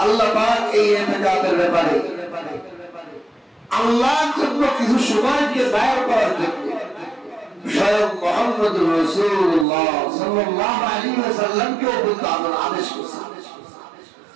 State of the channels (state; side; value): drops out; left; at 9.7 s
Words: আল্লাহ পাক এই ইতিকাফের ব্যাপারে আল্লাহর জন্য কিছু সময়কে দায়ের করার জন্য স্বয়ং মুহাম্মদুর রাসূলুল্লাহ সাল্লাল্লাহু আলাইহি ওয়াসাল্লামকে বলতে আদেশ করেছেন।